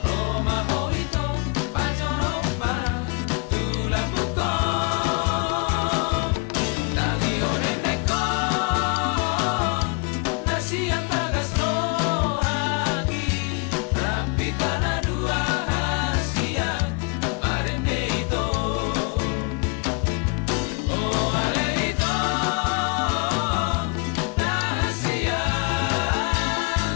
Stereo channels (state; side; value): quieter; right; 32.9 dB